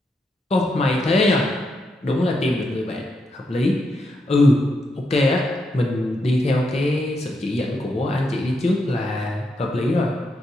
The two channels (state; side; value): normal; both; correlation 0.81